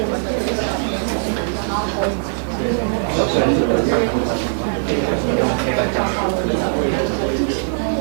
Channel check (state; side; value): silent; left; digital silence